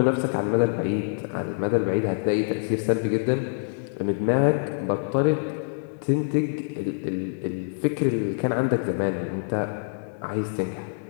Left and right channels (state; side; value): silent; right; digital silence